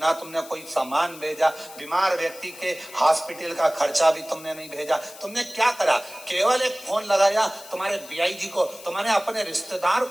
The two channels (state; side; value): noise; left; hiss, 17 dB below the sound